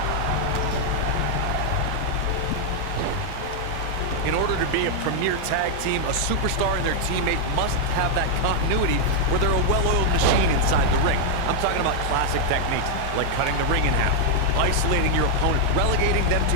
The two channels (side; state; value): both; different; correlation 0.00